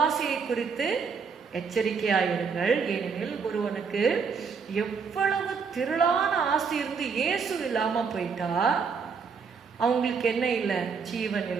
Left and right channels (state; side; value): quieter; left; 5.6 dB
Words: குறித்து எச்சரிக்கையாயிருங்கள். ஏனெனில் ஒருவனுக்கு எவ்வளவு திரளான ஆஸ்தி இருந்து இயேசு இல்லாம போயிட்டா அவங்களுக்கு என்ன இல்லை? ஜீவன்